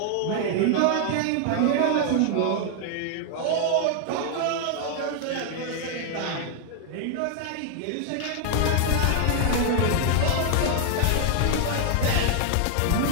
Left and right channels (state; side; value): different; both; correlation 0.00